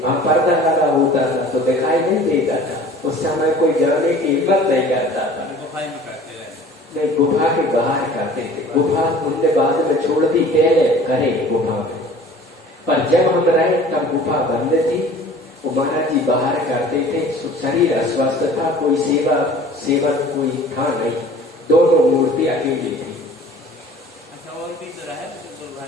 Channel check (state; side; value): normal; both; correlation 0.46